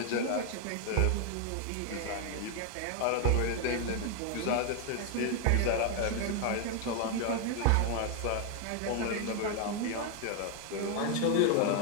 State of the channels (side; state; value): both; different; correlation 0.00